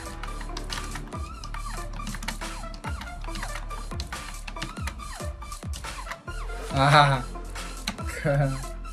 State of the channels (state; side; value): identical; both; correlation 1.00